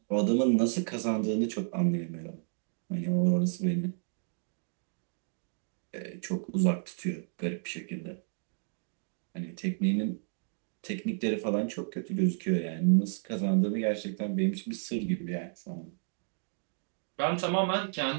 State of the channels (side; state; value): left; silent; digital silence